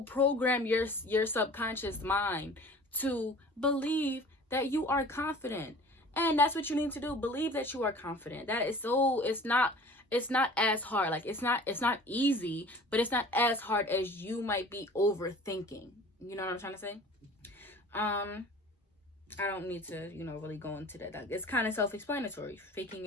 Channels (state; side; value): normal; both; correlation 0.45